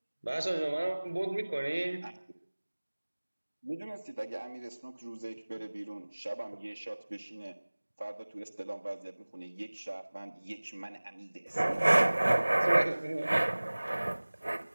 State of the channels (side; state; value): both; inverted; correlation -1.00